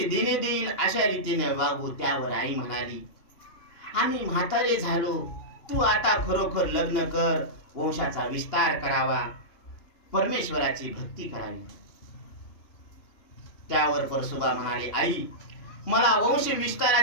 देणे देईल, अशा रीतीने वागू. त्यावर आई म्हणाली, आम्ही म्हातारे झालो, तू आता खरोखर लग्न कर, वंशाचा विस्तार करावा, परमेश्वराची भक्ती करावी. त्यावर परसोबा म्हणाले, आई मला वंश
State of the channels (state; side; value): late; right; 2.9 ms